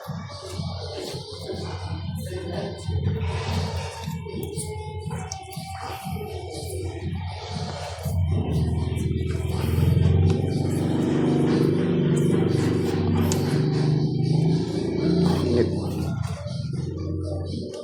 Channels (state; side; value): identical; both; correlation 1.00